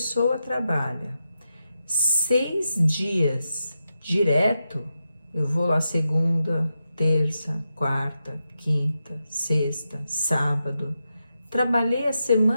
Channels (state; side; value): inverted; both; correlation -0.88